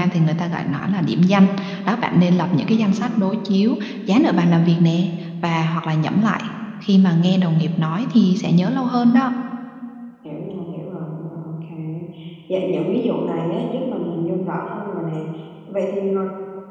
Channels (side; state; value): both; identical; correlation 1.00